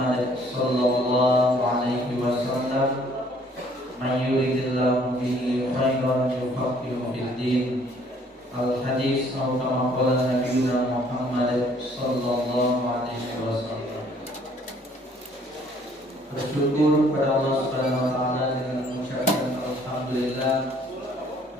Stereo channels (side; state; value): both; normal; correlation 0.60